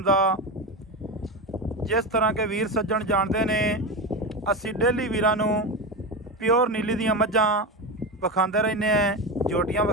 जिस तरह के वीर सज्जन जानते ने असी डेली वीरां नूं प्योर नीली दियां मझां विखांदे रहने हैं, जोटियां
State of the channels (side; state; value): both; normal; correlation 0.18